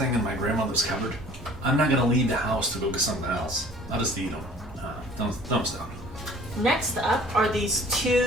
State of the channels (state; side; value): normal; both; correlation 0.50